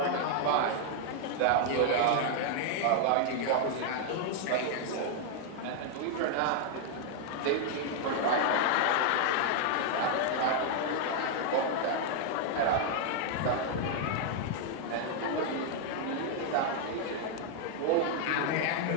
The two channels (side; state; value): both; different; correlation 0.00